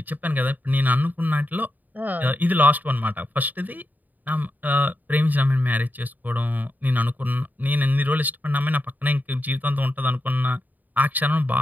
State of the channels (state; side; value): late; left; 0.084 ms